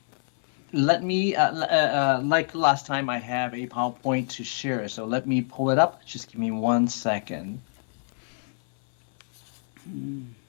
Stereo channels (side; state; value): right; silent; 58 dB below the other